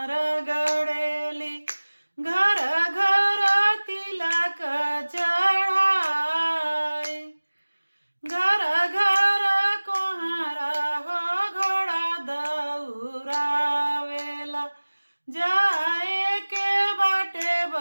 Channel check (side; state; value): both; inverted; correlation -1.00